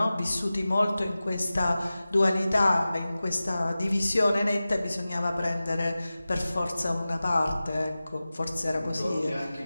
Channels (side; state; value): both; inverted; correlation -0.96